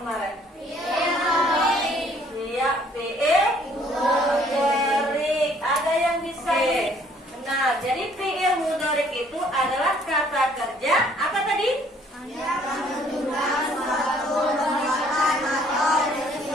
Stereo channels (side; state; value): both; normal; correlation 0.61